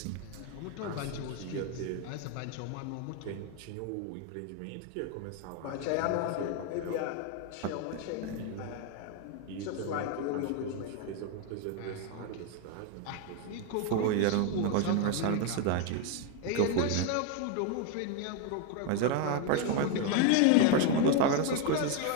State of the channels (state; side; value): different; both; correlation 0.01